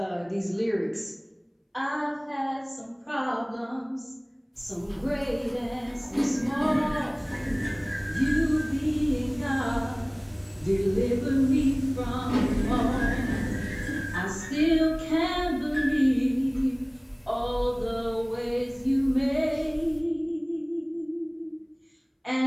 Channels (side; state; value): both; identical; correlation 1.00